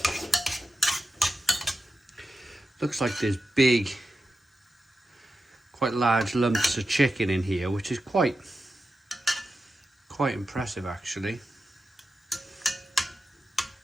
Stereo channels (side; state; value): both; normal; correlation 0.90